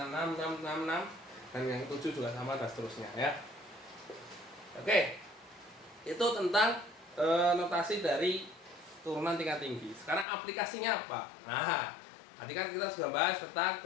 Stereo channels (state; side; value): drops out; right; at 10.2 s